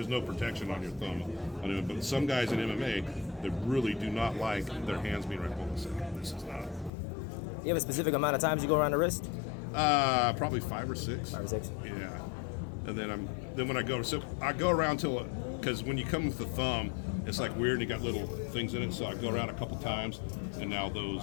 no protection on your thumb. But some guys in MMA, they really do not like their hands being right. Hold on a second. This is not. You have a specific amount of times you go around the wrist? Probably 5 or 6. 5 or 6. Yeah. And then when I go, so I go around till, because when you come with the thumb, it's like weird and you got little things in it. So I go around a couple times, and now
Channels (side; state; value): right; drops out; at 6.9 s